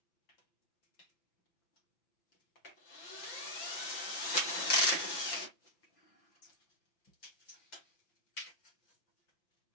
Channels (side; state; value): right; late; 5.9 ms